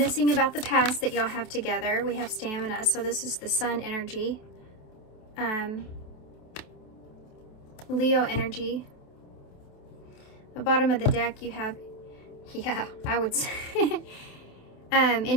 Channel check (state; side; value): late; right; 28 ms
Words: about the past that y'all have together. We have stamina, so this is the Sun energy. Leo energy. The bottom of the deck you have, yeah, I would say,